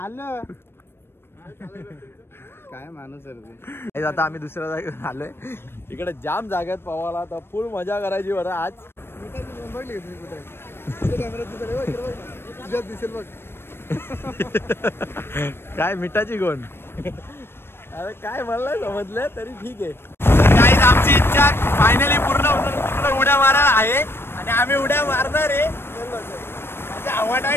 काय माणूस आहे आता आम्ही दुसऱ्या जागेवर आलोय इकडे जाम जागेत पवाला तर फुल मजा करायची बरं आज दिसेल बघ काय मिठाची गोण अरे काय मला समजलं तरी ठीक आहे गाईज आमची इच्छा फायनली पूर्ण होतं तिकडे उड्या मारायला आहे आणि आम्ही उड्या मारणार आहे हवा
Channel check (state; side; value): late; right; 0.11 ms